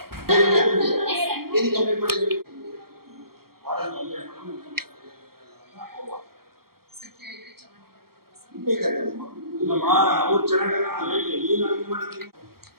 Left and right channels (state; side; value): late; left; 0.94 ms